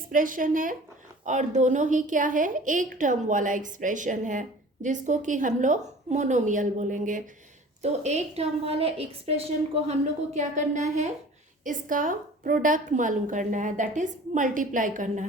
है और दोनों ही क्या है, एक टर्म वाला एक्सप्रेशन है जिसको कि हम लोग मोनोमियल बोलेंगे। तो एक टर्म वाले एक्सप्रेशन को हम लोग को क्या करना है, इसका प्रोडक्ट मालूम करना है, दैट इज मल्टीप्लाई करना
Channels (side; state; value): both; normal; correlation 0.44